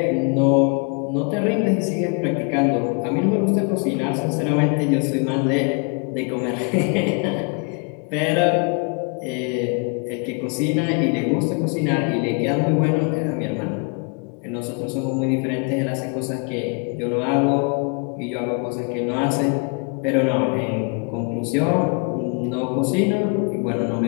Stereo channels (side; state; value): right; quieter; 36.5 dB